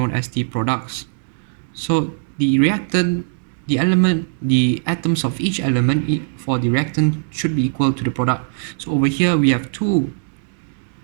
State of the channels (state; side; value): silent; left; digital silence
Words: as the products. So the atoms of each element for the reactant should be equal to the product. So over here we have two